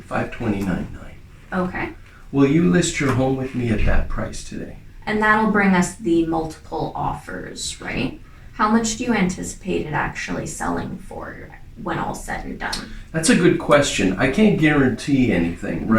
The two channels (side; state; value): both; identical; correlation 1.00